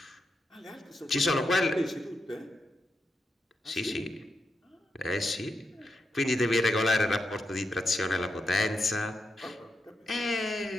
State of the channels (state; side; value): normal; both; correlation 0.85